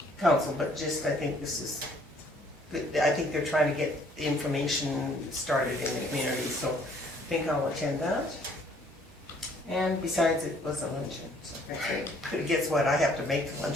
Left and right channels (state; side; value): normal; both; correlation 0.61